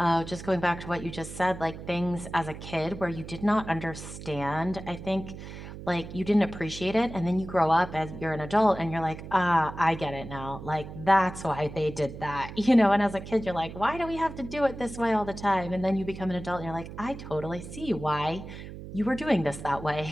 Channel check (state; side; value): noise; right; hum, 12 dB below the sound